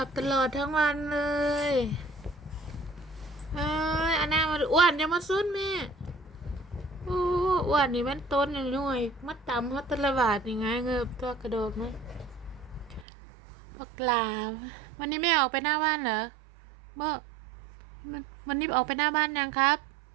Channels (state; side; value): drops out; left; at 13.1 s